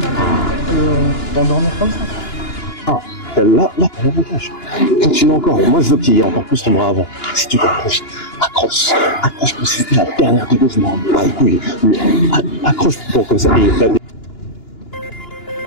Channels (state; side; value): late; right; 2.9 ms